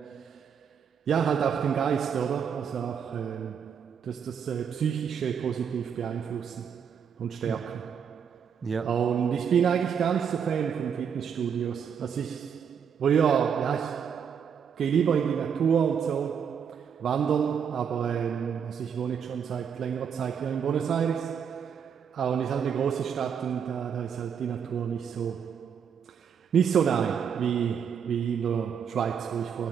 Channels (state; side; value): quieter; left; 7.4 dB